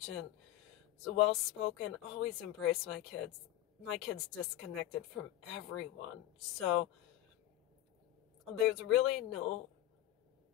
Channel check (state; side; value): quieter; right; 14.1 dB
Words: well-spoken, always embrace my kids. My kids disconnected from everyone. So there's really